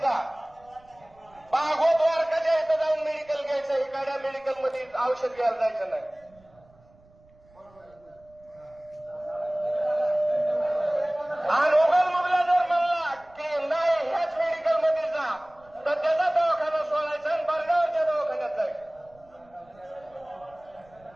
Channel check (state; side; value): noise; right; rumble, 29 dB below the sound